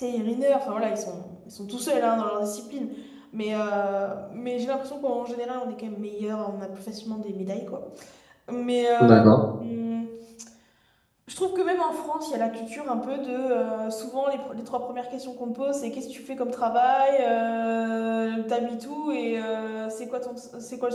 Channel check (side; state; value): both; identical; correlation 1.00